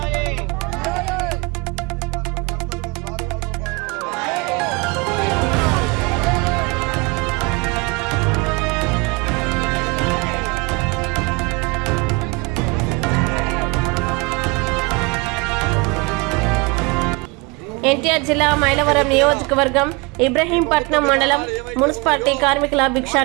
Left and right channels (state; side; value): quieter; left; 27.7 dB